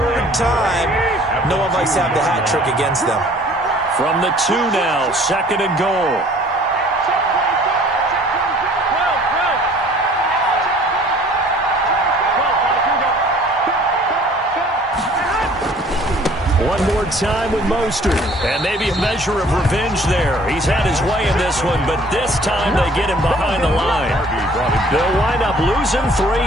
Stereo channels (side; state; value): both; normal; correlation 0.54